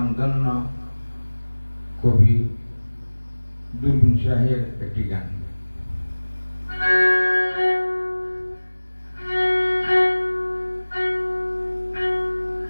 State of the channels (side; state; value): both; inverted; correlation -1.00